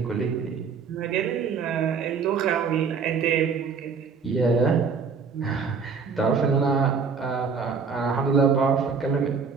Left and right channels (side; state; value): left; quieter; 5.5 dB